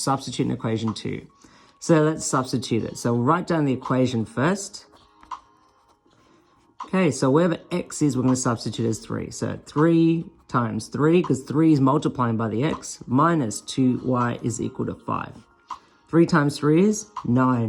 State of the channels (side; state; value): both; identical; correlation 1.00